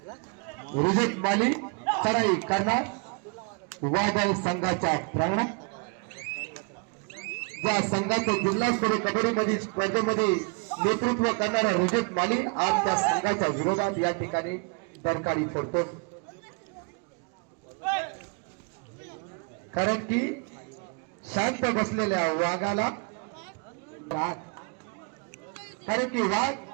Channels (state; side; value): quieter; left; 34.8 dB